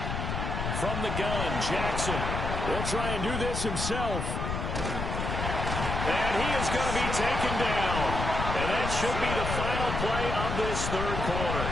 From the gun, Jackson will try and do this himself. And he is going to be taken down. And that should be the final play of this 3rd quarter.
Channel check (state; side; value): noise; left; rumble, 3 dB below the sound